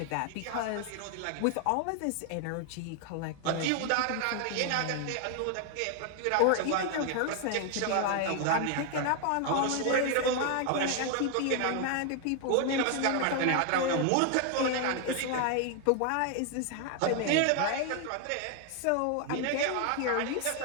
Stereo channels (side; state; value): both; different; correlation 0.00